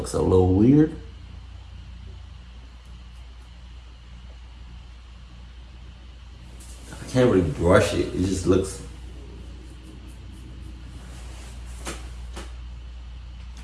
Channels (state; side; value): identical; both; correlation 1.00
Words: a little weird. I can't really brush it. It just looks.